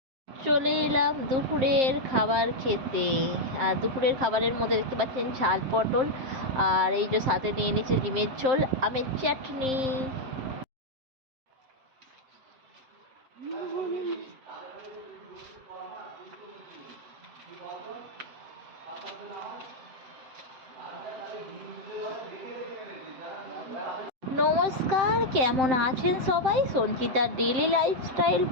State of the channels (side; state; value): left; late; 7.6 ms